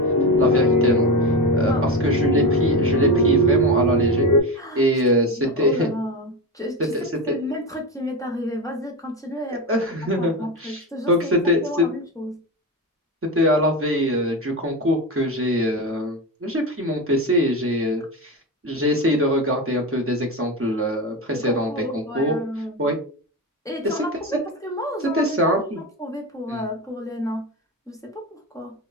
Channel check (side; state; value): both; normal; correlation 0.19